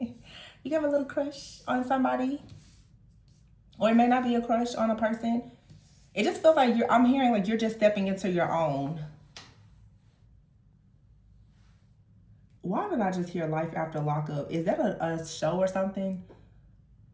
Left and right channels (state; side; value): identical; both; correlation 1.00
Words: can have a little crush on somebody. Or it may not be a crush on a person. It just feels like I'm hearing like you're just stepping into your own. Why did I just hear Life After Lockup? Is that a show or something?